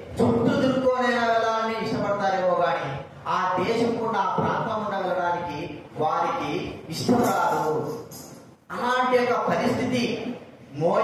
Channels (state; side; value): identical; both; correlation 1.00